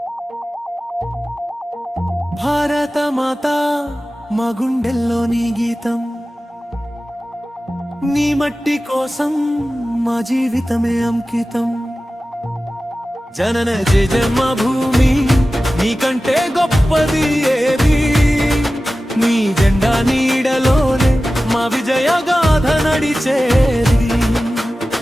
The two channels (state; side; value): normal; both; correlation 0.95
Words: భారత మాత మా గుండెల్లో నీ గీతం, నీ మట్టి కోసం మా జీవితమే అంకితం. జనన జన్మ భూమి నీకంటే గొప్పది ఏది, నీ జెండా నీడలోనే మా విజయ గాథ నడిచేది.